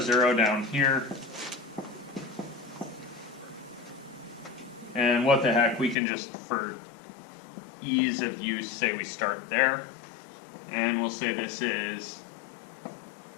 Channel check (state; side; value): drops out; right; at 6.0 s